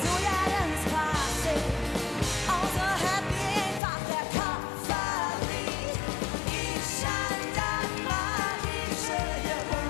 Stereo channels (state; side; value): drops out; right; at 3.8 s